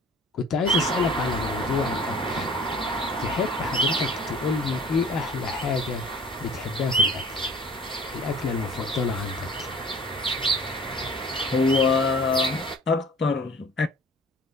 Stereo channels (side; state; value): both; normal; correlation 0.47